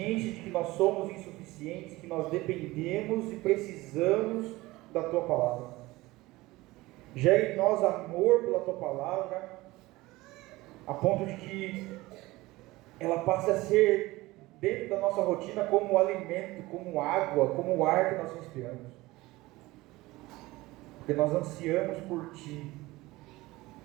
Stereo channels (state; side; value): quieter; left; 19.8 dB